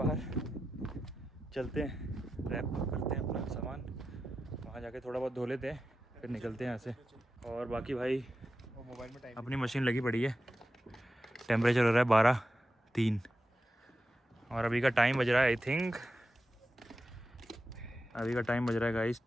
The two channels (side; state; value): both; normal; correlation 0.91